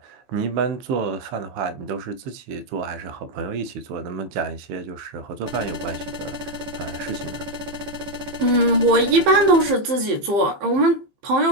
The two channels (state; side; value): late; left; 15 ms